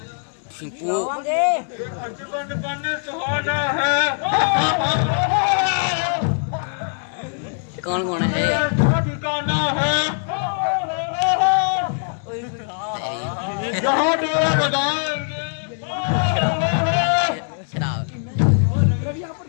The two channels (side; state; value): right; silent; 65 dB below the other